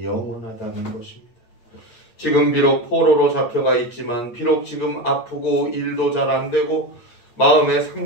영원하다는 것입니다. 지금 비록 포로로 잡혀가 있지만, 비록 지금 아프고 일도 잘 안 되고 마음에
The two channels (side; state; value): right; late; 8.6 ms